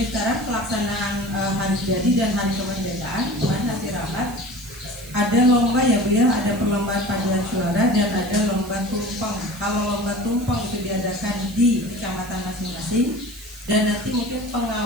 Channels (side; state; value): right; noise; hiss, 18 dB below the sound